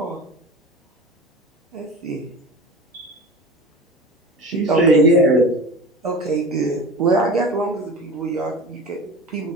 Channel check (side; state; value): both; normal; correlation 0.33